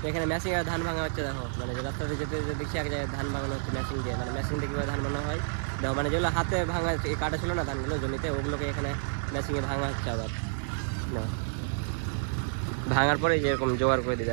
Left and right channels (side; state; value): left; silent; 58 dB below the other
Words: এখানে মেশিন আর ধান ভাঙা হচ্ছে। দেখো মানে রাস্তাতে যেতে দেখছি এক জায়গায় ধান ভাঙানো হচ্ছে মেশিন দিয়ে, মানে মেশিন দিয়ে কীভাবে ধান ভাঙা হয়। দেখো মানে যেগুলো হাতে ভাঙা কাটা ছিল না ধানগুলো জমিতে, ওগুলোকে এখানে মেশিনে ভাঙা হচ্ছে আবার। না ভাঙার পরে যেরকম জোগাড় করে দিতে